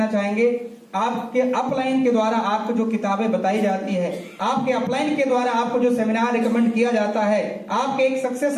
चाहेंगे, आपके अपलाइन के द्वारा आपको जो किताबें बताई जाती है, आपके अपलाइन के द्वारा आपको जो सेमिनार रिकमेंड किया जाता है, आपके एक सक्सेस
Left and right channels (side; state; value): both; identical; correlation 1.00